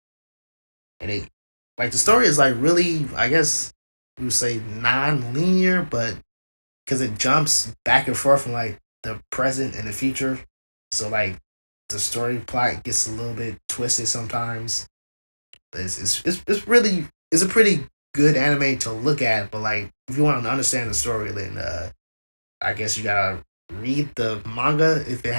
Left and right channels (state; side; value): inverted; both; correlation -1.00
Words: and it like the story is like really, I guess we would say non-linear, but because it jumps back and forth from like the present and the future. So like the story plot gets a little bit twisted sometimes. It's really it's a pretty good anime to look at, but like if you want to understand the story, then I guess you gotta read the manga if it